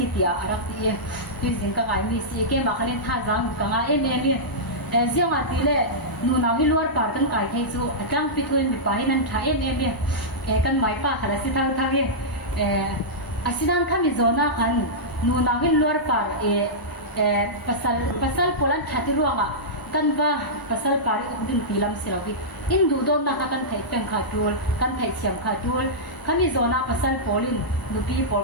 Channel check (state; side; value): late; right; 1.0 ms